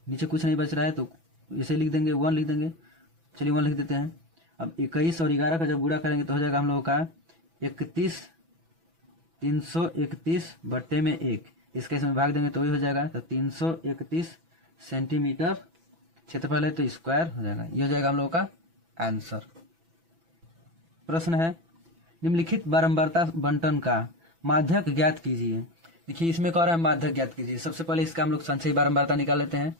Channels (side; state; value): left; late; 6.0 ms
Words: नीचे कुछ नहीं बच रहा है तो इसे लिख देंगे 1 लिख देंगे। चलिए 1 लिख देते हैं। अब 21 और 11 का जब गुणा करेंगे तो हो जाएगा हम लोगों का 331/1। इसका इसमें भाग देंगे तो वही हो जाएगा, तो 331 सेंटीमीटर क्षेत्रफल है तो स्क्वायर हो जाएगा। ये हो जाएगा हम लोगों का आंसर। प्रश्न है, निम्नलिखित बारंबारता बंटन का माध्यक ज्ञात कीजिए। देखिए इसमें कह रहा है माध्यक ज्ञात कीजिए। सबसे पहले इसका हम लोग संचयी बारंबारता निकाल लेते हैं।